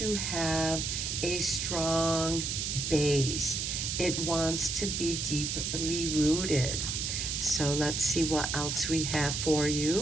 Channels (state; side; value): noise; right; hiss, 2 dB below the sound